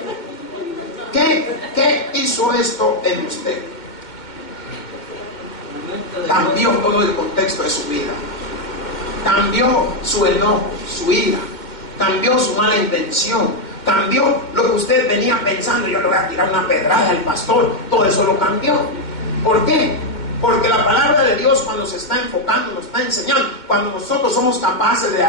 ¿Qué hizo esto en usted? Cambió todo el contexto de su vida. Cambió su enojo, su ira. Cambió su mala intención. Cambió lo que usted venía pensando: yo le voy a tirar una pedrada al pastor. Todo eso lo cambió. ¿Por qué? Porque la palabra de Dios, cuando se está enfocando, nos está enseñando, cuando nosotros somos capaces de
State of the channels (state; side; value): late; right; 2.1 ms